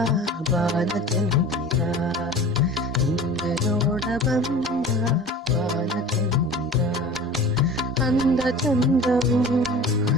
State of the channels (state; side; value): normal; both; correlation 0.39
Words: ಬಾಲಚಂದಿರ, ನಿನ್ನ ನೋಡ ಬಂದ ಬಾಲಚಂದಿರ, ಅಂದ ಚಂದವು